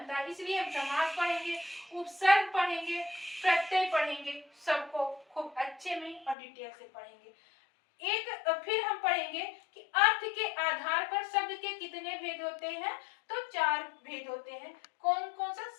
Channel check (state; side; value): drops out; right; at 6.4 s